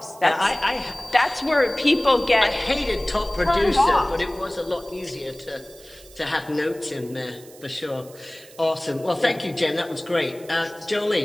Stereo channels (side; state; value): right; noise; hiss, 22 dB below the sound